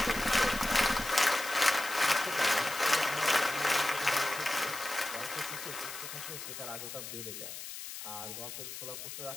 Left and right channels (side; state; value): left; noise; hiss, 9 dB below the sound